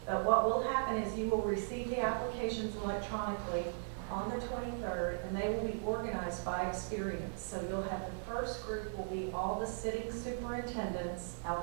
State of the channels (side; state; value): left; silent; digital silence